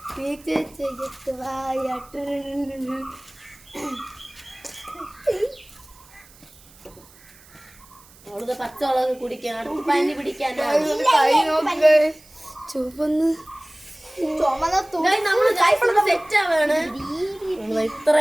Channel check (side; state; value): right; noise; hiss, 25 dB below the sound